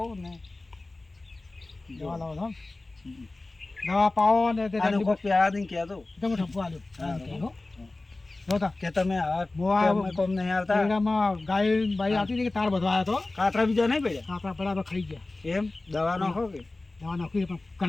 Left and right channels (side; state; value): right; quieter; 3.1 dB